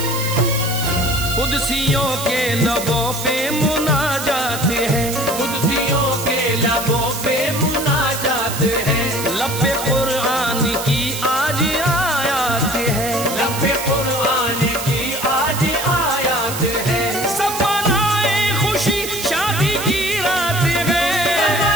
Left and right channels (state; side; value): noise; right; hiss, 7 dB below the sound